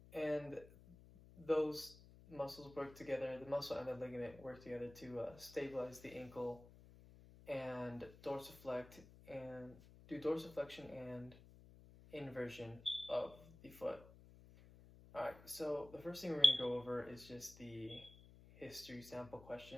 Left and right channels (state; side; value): noise; left; hum, 19 dB below the sound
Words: and those muscles work together, the muscle and the ligament work together to stabilize the ankle and dorsiflect and do dorsiflexion and inversion of the foot. Alright, so the first thing we're going to go over is just the history sample